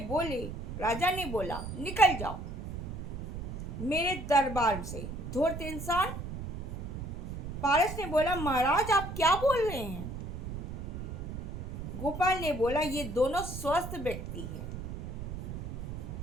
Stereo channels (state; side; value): noise; right; rumble, 7 dB below the sound